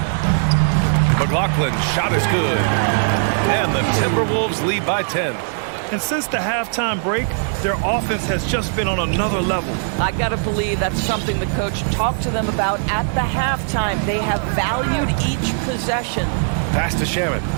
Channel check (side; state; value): left; silent; digital silence